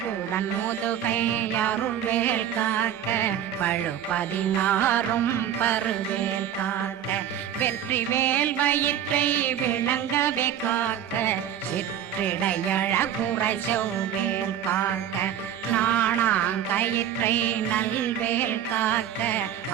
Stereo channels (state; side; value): quieter; left; 9.9 dB